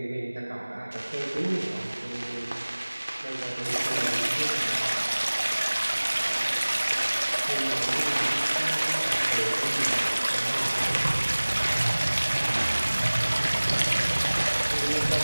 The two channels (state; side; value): inverted; both; correlation -1.00